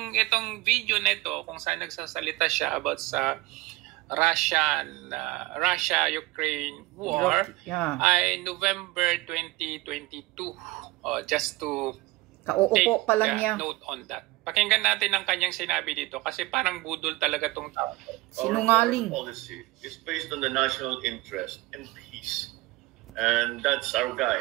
video nito kung saan nagsasalita siya about sa Russia-Ukraine war ay November 2022. Just to Kauupo pa lang niya. Note on that. Pakinggan natin ang kanyang sinabi dito kasi parang budol talaga tong tao. Sinungaling. Our policy is based on the national interest and peace. And that's our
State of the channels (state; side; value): quieter; left; 19.5 dB